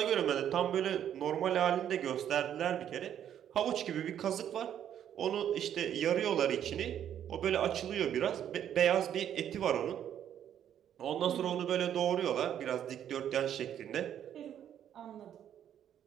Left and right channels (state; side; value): quieter; left; 9.9 dB